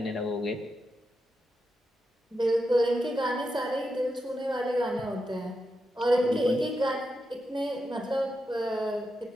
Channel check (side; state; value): both; normal; correlation 0.87